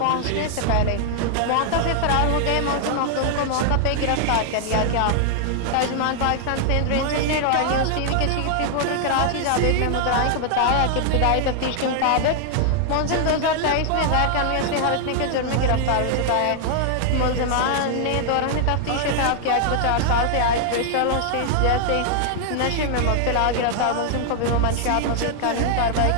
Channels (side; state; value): both; different; correlation -0.01